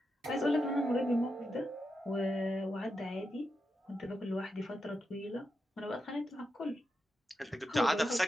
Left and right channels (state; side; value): normal; both; correlation 0.87